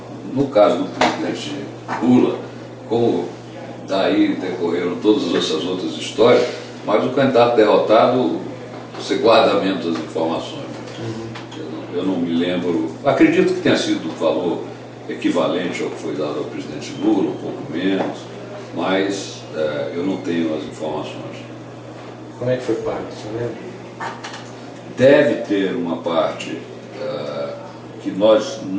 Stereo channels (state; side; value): identical; both; correlation 1.00